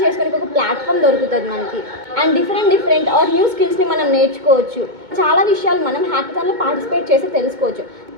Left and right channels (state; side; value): late; left; 2.2 ms